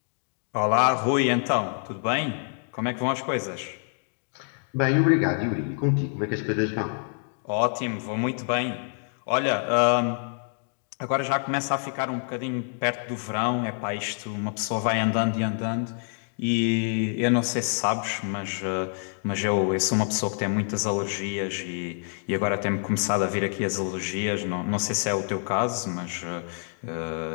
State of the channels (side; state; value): right; silent; 55 dB below the other